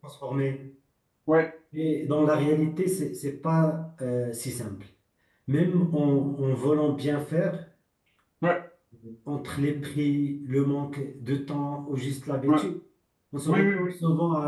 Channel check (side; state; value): both; identical; correlation 1.00